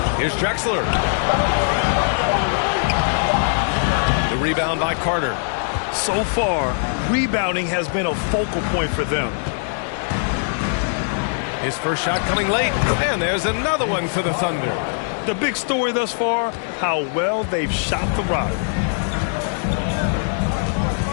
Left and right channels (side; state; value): right; silent; digital silence